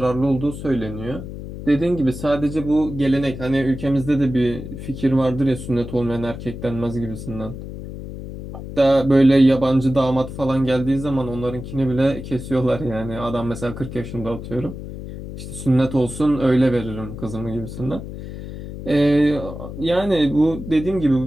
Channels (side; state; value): left; noise; hum, 10 dB below the sound